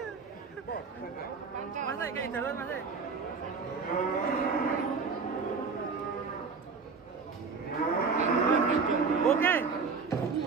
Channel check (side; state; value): left; quieter; 5.0 dB